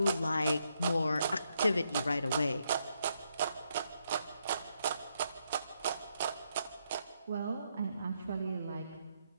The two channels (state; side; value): inverted; both; correlation -0.78